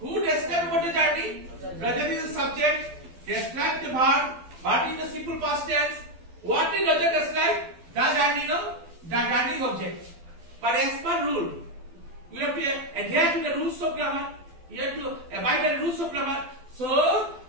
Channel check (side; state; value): left; late; 12 ms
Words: who described about the journey? Rajat is the subject. Describe the verb. Verb is the simple past tense. What did Rajat describe? The journey, no? The journey is object. But as per rule, we have to adhere to the rules of grammar. You have to abide by the rules of grammar. So,